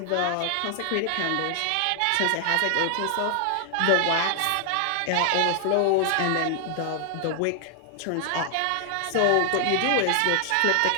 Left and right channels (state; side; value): different; both; correlation 0.00